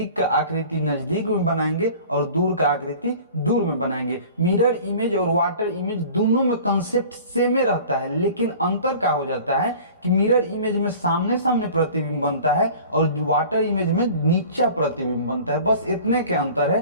का आकृति नजदीक में बनाएंगे और दूर का आकृति दूर में बनाएंगे। मिरर इमेज और वाटर इमेज दोनों में कंसेप्ट सेम ही रहता है, लेकिन अंतर क्या हो जाता है कि मिरर इमेज में सामने सामने प्रतिबिंब बनता है और वाटर इमेज में नीचा प्रतिबिंब बनता है। बस इतने के अंतर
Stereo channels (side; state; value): both; inverted; correlation -0.44